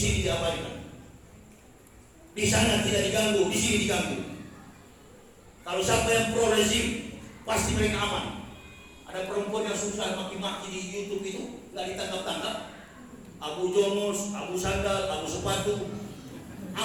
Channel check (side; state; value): both; identical; correlation 1.00